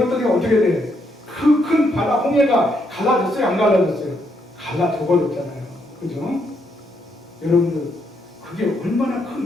어떻게 돼? 그 큰 바다 홍해가 갈라졌어요? 안 갈라졌어요? 갈라져 버렸잖아요. 그죠? 여러분들 그게 얼마나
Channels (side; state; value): both; normal; correlation 0.76